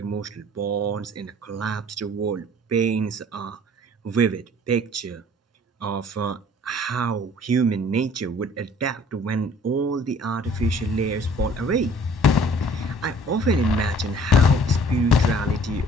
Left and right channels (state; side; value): normal; both; correlation 0.53